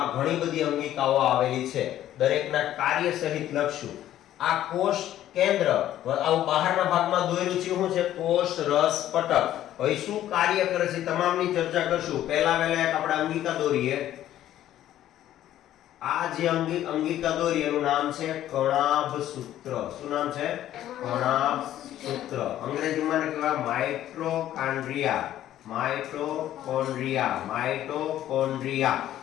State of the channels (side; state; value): right; quieter; 12.5 dB